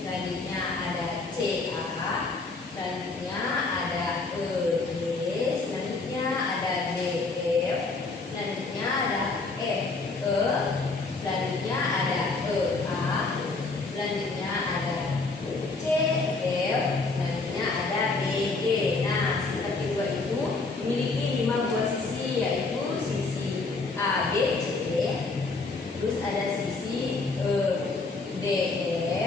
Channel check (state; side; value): quieter; right; 3.8 dB